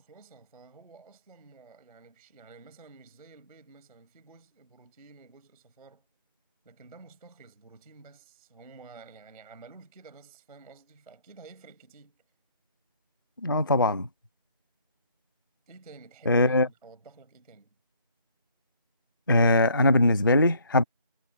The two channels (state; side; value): inverted; both; correlation -0.61